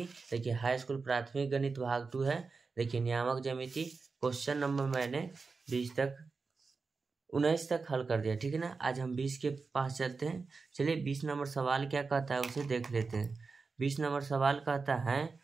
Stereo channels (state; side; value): quieter; left; 4.5 dB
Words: देखिए हाई स्कूल प्राथमिक गणित भाग 2 है। देखिए नियामक ज्यामिति क्वेश्चन नंबर मैंने 19 तक हल कर दिया, ठीक है ना। आज हम 20 के पास चलते हैं। चलिए 20 नंबर सवाल क्या कहता है उसे देख लेते हैं। 20 नंबर सवाल कहता है,